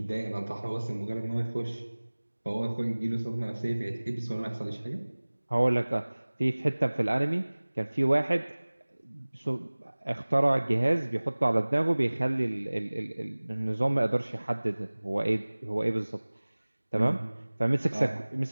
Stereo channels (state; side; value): inverted; both; correlation -1.00